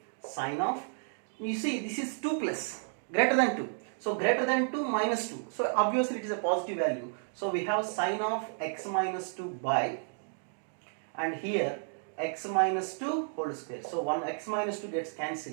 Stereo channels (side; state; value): left; silent; digital silence